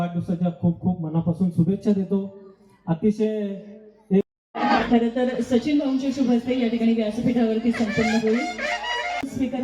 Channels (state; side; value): identical; both; correlation 1.00